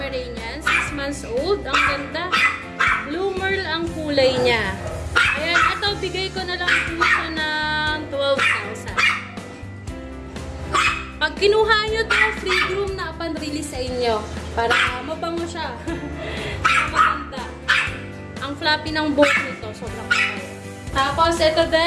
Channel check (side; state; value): both; identical; correlation 1.00